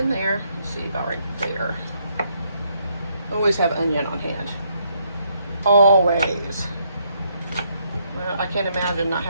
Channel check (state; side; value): inverted; both; correlation -0.73